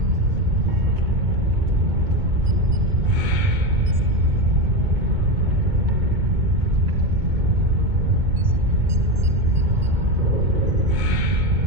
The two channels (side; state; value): left; late; 2.2 ms